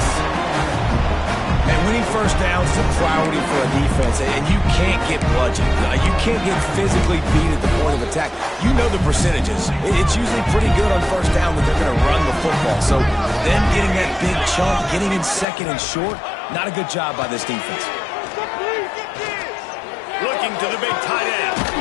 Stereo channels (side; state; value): right; drops out; at 15.5 s